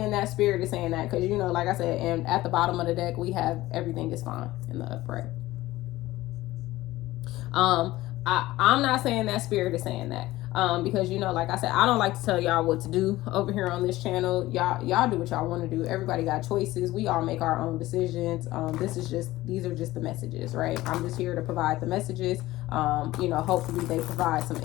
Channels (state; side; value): quieter; right; 17.2 dB